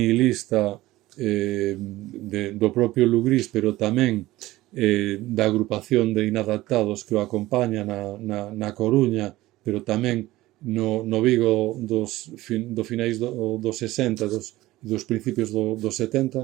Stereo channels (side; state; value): left; quieter; 17.4 dB